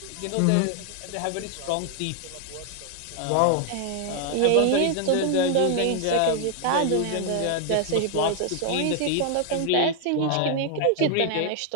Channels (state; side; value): different; both; correlation 0.00